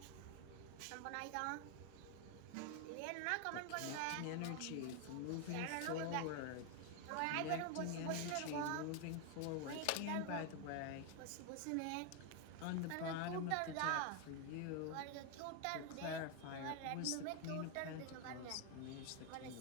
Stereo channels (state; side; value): different; both; correlation 0.01